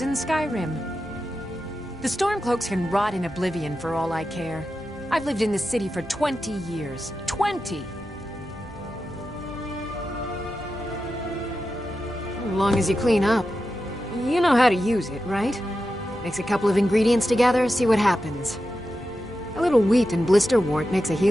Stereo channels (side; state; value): both; normal; correlation 0.90